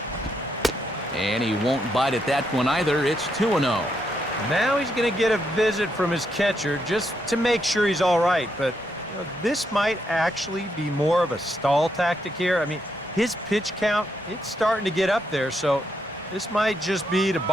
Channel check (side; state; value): both; normal; correlation 0.79